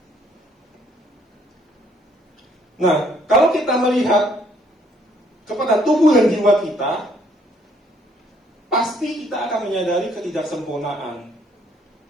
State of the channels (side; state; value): both; normal; correlation 0.66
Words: Nah, kalau kita melihat kepada tubuh dan jiwa kita, pasti kita akan menyadari ketidaksempurnaan